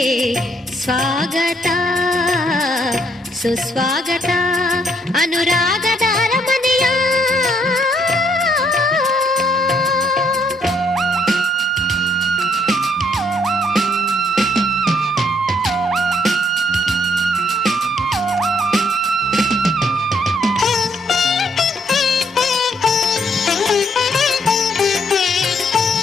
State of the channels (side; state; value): both; normal; correlation 0.70